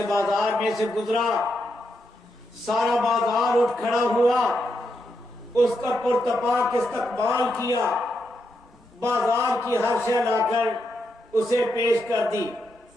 بازار میں سے گزرا، سارا بازار اٹھ کھڑا ہوا، اس کا پرتپاک استقبال کیا، بازار کی ہر شے لا کر اسے پیش کر دی،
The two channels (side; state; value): both; normal; correlation 0.82